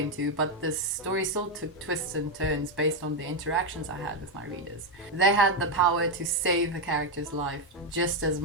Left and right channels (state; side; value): normal; both; correlation 0.04